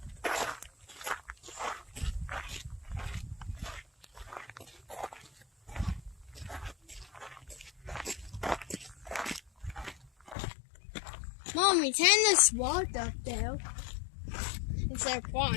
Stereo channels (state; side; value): drops out; right; at 10.4 s